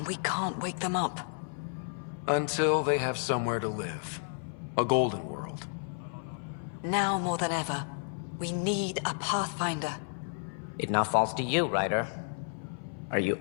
we can't wake them up. Until they have somewhere to live. A golden world. Now more than ever, we need a Pathfinder. It now falls to you, Ryder. Are you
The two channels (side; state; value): right; silent; 56 dB below the other